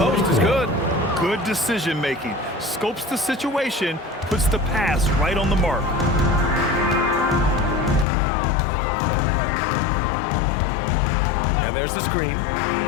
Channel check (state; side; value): drops out; right; at 8.1 s